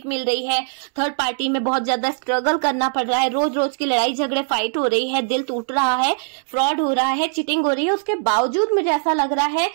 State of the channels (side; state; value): left; silent; 65 dB below the other